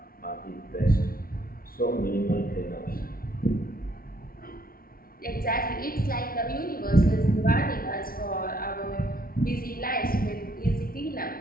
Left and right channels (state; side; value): late; right; 0.43 ms